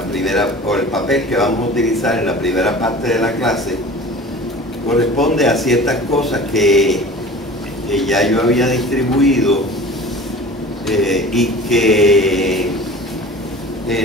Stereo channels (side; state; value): both; normal; correlation 0.40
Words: primera, o el papel que vamos a utilizar en la primera parte de la clase, corresponde a ciertas cosas que ya yo había distribuido y que